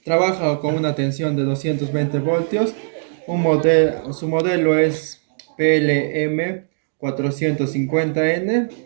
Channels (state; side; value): silent; left; digital silence